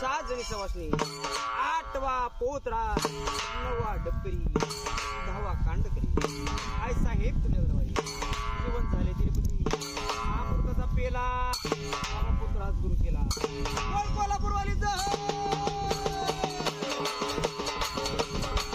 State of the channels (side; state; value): both; identical; correlation 1.00